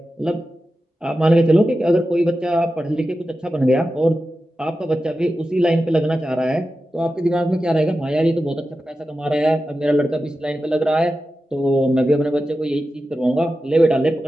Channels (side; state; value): both; normal; correlation 0.92